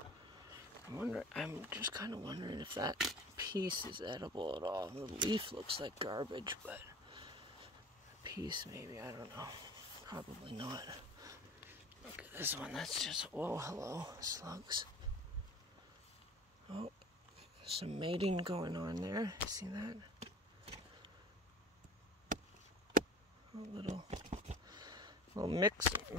I'm just kind of wondering if that piece is edible at all. The leaf looks like garbage, but the piece maybe, I don't know. Probably not. Look at this one, that's just, whoa, hello, slugs. Oh, some mating going on there. See that? A little mix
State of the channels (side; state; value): both; normal; correlation 0.42